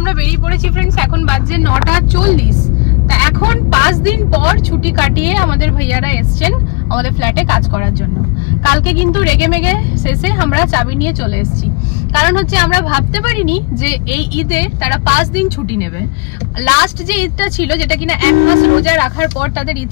আমরা বেরিয়ে পড়েছি ফ্রেন্ডস। এখন বাজে 9:40। তা এখন 5 দিন পর ছুটি কাটিয়ে আমাদের ভাইয়ারা এসছেন আমাদের ফ্ল্যাটে কাজ করার জন্য। কালকে কিন্তু রেগে মেগে শেষে আমরা চাবি নিয়ে চলে এসেছি। কারণ হচ্ছে আমরা ভাবতে পারিনি যে এই ঈদে তারা 5 দিন ছুটি নেবে। লাস্ট যে ঈদটা ছিল, যেটা কিনা 1 মাস রোজা রাখার পর তাদের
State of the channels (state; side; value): quieter; right; 29.2 dB